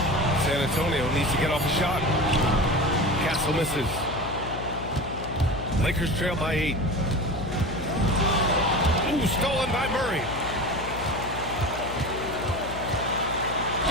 San Antonio needs to get off a shot. Castle misses. Lakers trail by 8. Ooh, stolen by Murray.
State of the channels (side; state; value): left; noise; hum, 9 dB below the sound